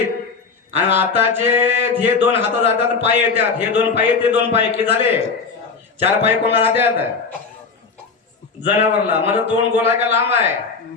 आणि आताचे हे दोन हात जातात पाय येतात. हे दोन पाय ते दोन पाय की झाले चार पाय कोणा राहतात जनावरला. मला तोंड गोल आहे का लांब आहे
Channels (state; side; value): quieter; right; 4.9 dB